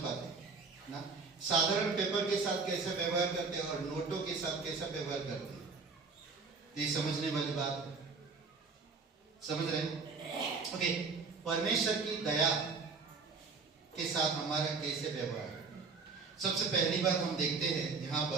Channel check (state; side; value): quieter; left; 4.6 dB